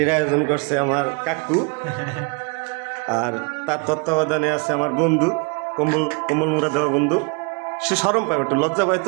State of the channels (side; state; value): left; quieter; 33.4 dB